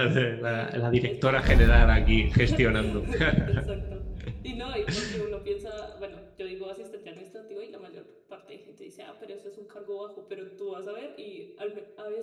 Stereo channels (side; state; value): both; identical; correlation 1.00